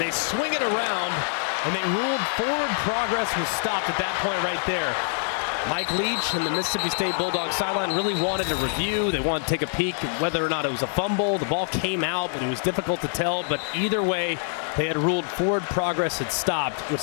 swing it around, and they ruled forward progress was stopped at that point right there. Mike Leach and the Mississippi State Bulldogs sideline really wanted a review. They wanted to take a peek at whether or not it was a fumble. The ball came out, but it was difficult to tell. But either way, they had ruled forward progress had stopped, which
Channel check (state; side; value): silent; right; 62 dB below the other